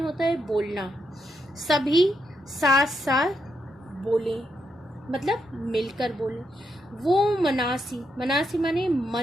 है बोलना, सभी साथ साथ बोले मतलब मिलकर बोले। वो मनासी, मनासी माने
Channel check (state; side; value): normal; both; correlation 0.81